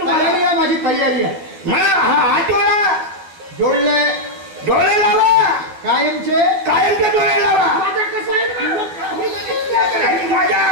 माझी तयारी आहे. मला हा हात डोळा जोडले, डोळे लावा, कायमचे डोळे लावा. माझं कसं आहे माझ्या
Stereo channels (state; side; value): late; left; 12 ms